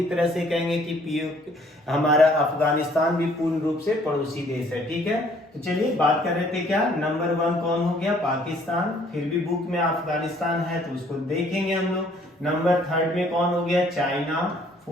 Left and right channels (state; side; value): normal; both; correlation 0.61